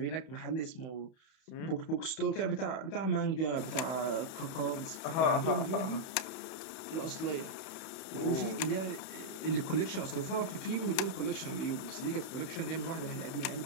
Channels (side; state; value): right; late; 31 ms